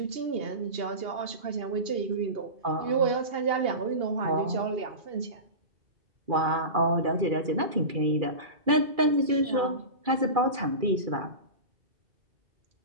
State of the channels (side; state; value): left; late; 2.4 ms